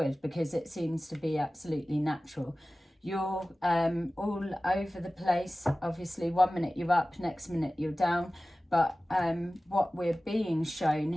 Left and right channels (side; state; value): both; normal; correlation 0.97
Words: because it seems to be absolutely natural. You're all over the place. Obviously, 1 minute you're up, next minute you're down. But what we're being shown